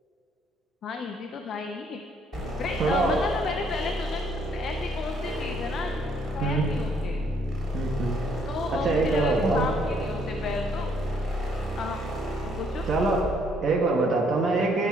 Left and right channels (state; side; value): normal; both; correlation 0.67